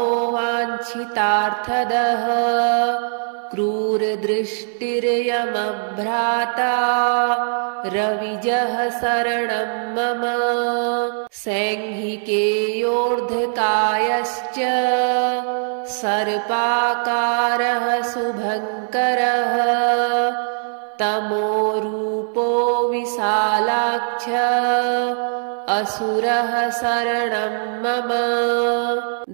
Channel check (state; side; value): silent; left; digital silence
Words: वाञ्छितार्थदः क्रूरदृष्टिर्यमभ्राता रविजः शरणं मम सैंघिकेयोर्ध्वकायश्च सर्पाकारः शुभङ्करः तमोरूपो विशालाक्ष असुरः शरणं मम